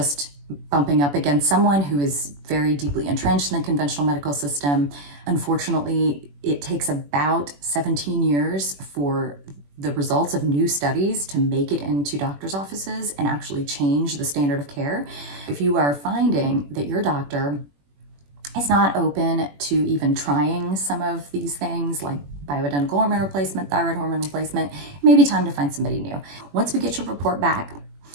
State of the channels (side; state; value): left; late; 21 ms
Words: bumping up against someone who is very deeply entrenched in the conventional medical system. Unfortunately, it takes about 17 years for the results of new studies to make it into doctors' offices and actually change the standard of care. If you are finding that your doctor is not open to even trying some of these things like bioidentical hormone replacement, thyroid hormone replacement, it may be time to find somebody new. Once we get your report back,